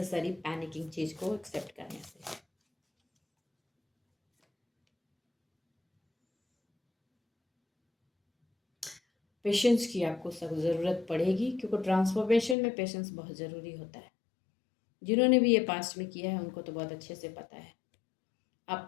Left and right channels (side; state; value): right; drops out; at 12.6 s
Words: पैनिकिंग चीज़ को एक्सेप्ट करने से। पेशेंस की आपको सब ज़रूरत पड़ेगी, क्योंकि ट्रांसफॉर्मेशन में पेशेंस बहुत ज़रूरी होता है। जिन्होंने भी ये पास्ट में किया है उनको तो बहुत अच्छे से पता है।